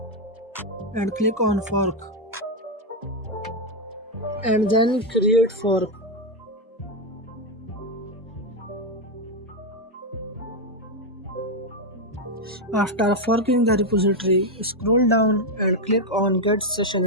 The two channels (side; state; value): both; normal; correlation 0.04